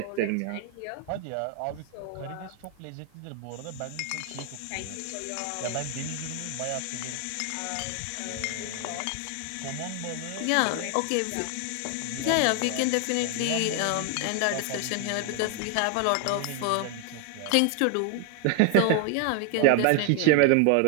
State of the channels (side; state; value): both; different; correlation 0.00